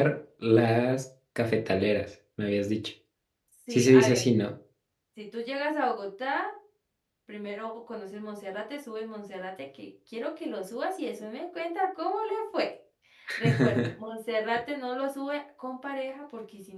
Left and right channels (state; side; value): identical; both; correlation 1.00